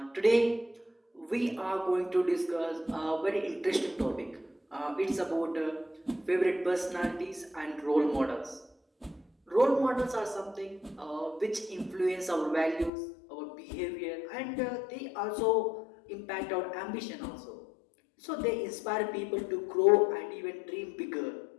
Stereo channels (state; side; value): drops out; right; at 12.9 s